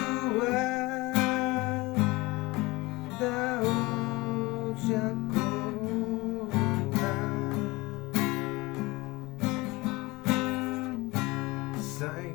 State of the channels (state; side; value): quieter; right; 22.7 dB